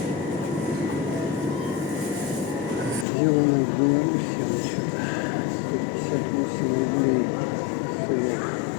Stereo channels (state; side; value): drops out; right; at 3.1 s